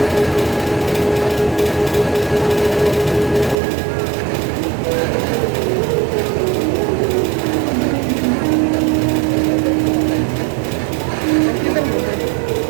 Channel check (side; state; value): left; drops out; at 3.6 s